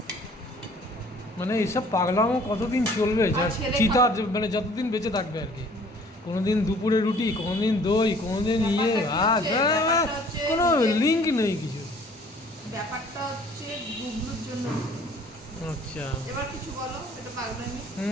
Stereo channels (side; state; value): both; normal; correlation 0.54